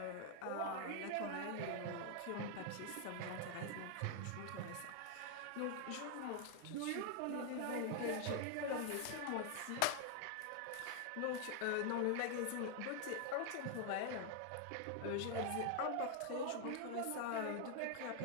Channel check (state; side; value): different; both; correlation 0.00